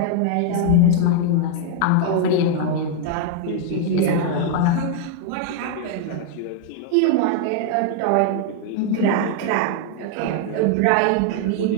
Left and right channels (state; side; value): different; both; correlation 0.00